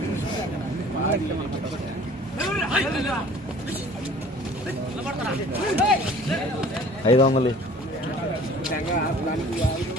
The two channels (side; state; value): both; normal; correlation 0.48